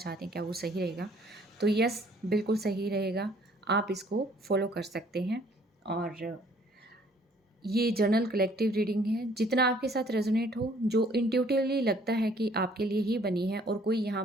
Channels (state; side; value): normal; both; correlation 0.59